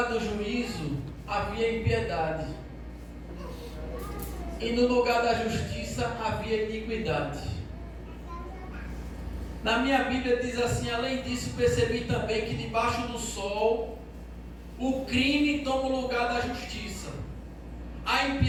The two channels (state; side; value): identical; both; correlation 1.00